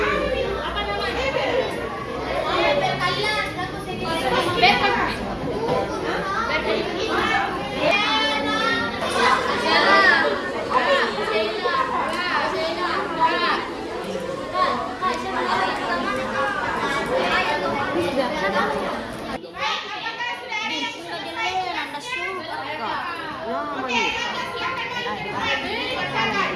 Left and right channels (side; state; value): both; identical; correlation 1.00